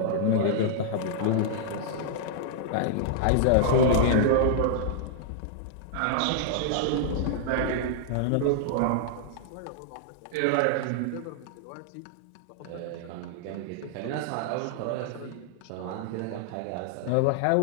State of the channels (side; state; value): both; different; correlation -0.01